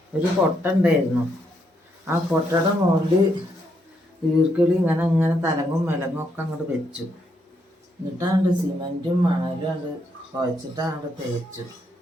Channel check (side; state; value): both; normal; correlation 0.77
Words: ഒരു കൊട്ട ഉണ്ടായിരുന്നു. ആ കൊട്ടയുടെ മുകളിൽ ഈർക്കിളി ഇങ്ങനെ തലങ്ങും വിലങ്ങും ഒക്കെ അങ്ങോട്ട് വെച്ചു. എന്നിട്ടാണ്ട് സിമെൻറ്റും മണലും അങ്ങോട്ട് കുഴച്ചിട്ട് അങ്ങോട്ട് തേച്ചു.